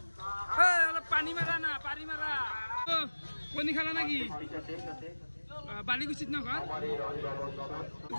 অলপ পানী মাৰা না পানী মাৰা কণী খালা নাকি বালিকুচিত নঘৰ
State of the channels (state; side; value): inverted; both; correlation -1.00